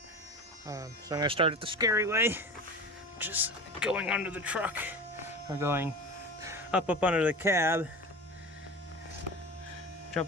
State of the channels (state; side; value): normal; both; correlation 0.32